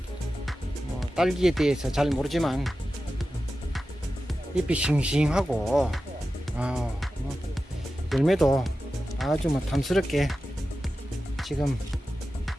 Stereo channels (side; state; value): both; normal; correlation 0.93